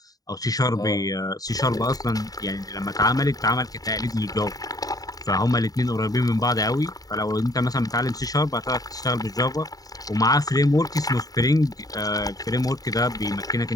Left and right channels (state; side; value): late; right; 0.18 ms